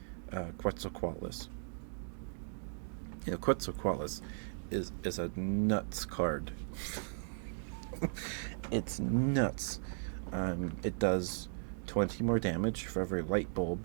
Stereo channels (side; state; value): left; silent; digital silence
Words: Quetzalcoatlus. Quetzalcoatlus is a nuts card. It's nuts. It does 20 more damage for every light